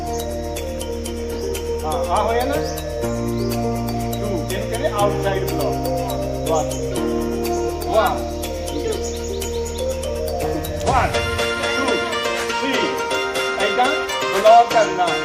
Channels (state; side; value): identical; both; correlation 1.00